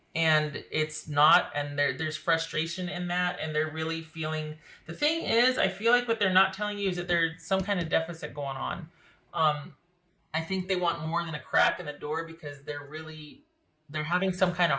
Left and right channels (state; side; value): identical; both; correlation 1.00